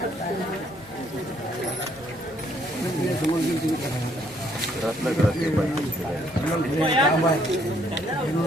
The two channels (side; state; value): both; normal; correlation 0.67